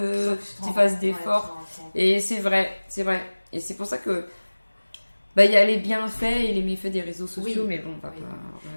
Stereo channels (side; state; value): both; inverted; correlation -1.00